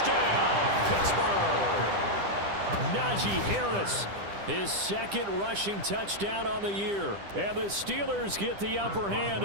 Pittsburgh! Najee Harris, his 2nd rushing touchdown on the year. And the Steelers get the upper hand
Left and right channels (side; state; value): left; late; 10 ms